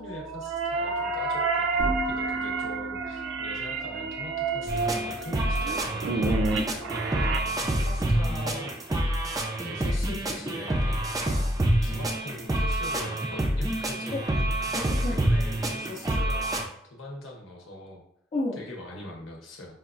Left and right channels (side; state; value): both; normal; correlation 0.62